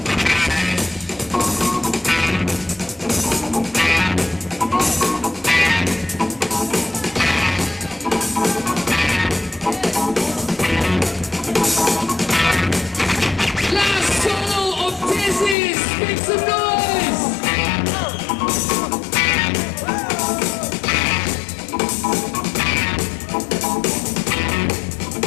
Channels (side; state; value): right; drops out; at 15.6 s